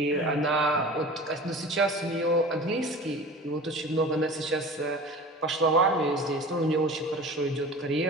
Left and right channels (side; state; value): both; normal; correlation 0.38